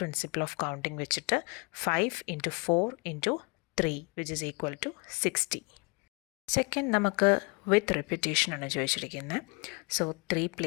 പ്രിൻസിപ്പിൾ ഓഫ് കൗണ്ടിങ് വെച്ചിട്ട് 5 × 4 × 3 which is equal to 60. Second നമുക്ക് വിത്ത് റെപ്പിറ്റേഷനാണ് ചോദിച്ചിരിക്കുന്നത്. 3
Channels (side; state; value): right; quieter; 30.5 dB